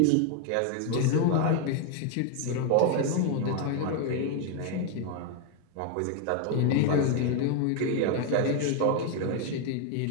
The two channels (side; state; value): both; different; correlation 0.01